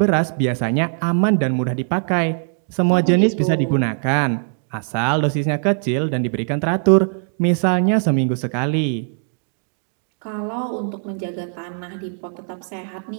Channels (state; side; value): silent; left; 60 dB below the other